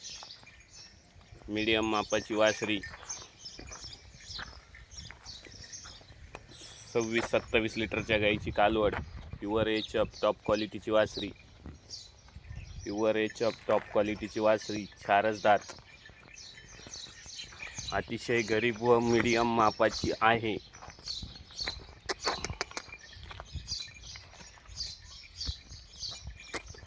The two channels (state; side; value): identical; both; correlation 1.00